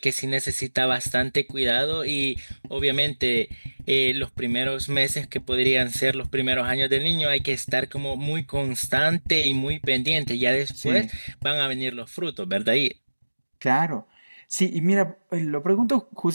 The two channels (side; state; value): both; inverted; correlation -1.00